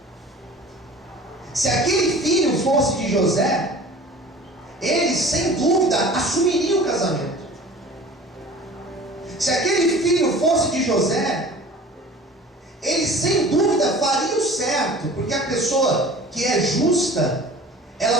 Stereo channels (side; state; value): both; normal; correlation 0.43